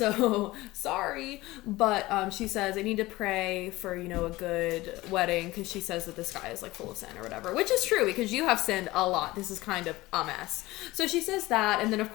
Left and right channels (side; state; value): right; quieter; 19.2 dB